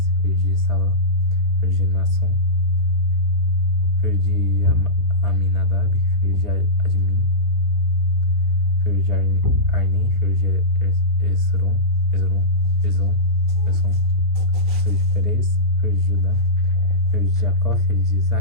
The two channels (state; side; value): normal; both; correlation -0.16